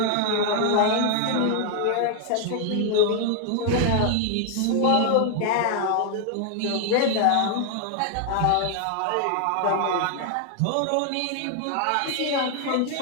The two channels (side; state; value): both; different; correlation 0.00